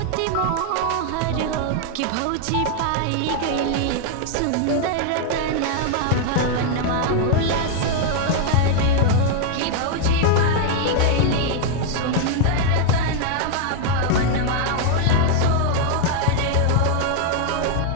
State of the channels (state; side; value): different; both; correlation 0.00